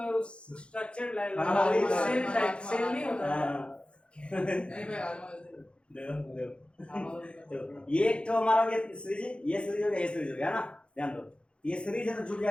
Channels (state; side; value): late; right; 0.057 ms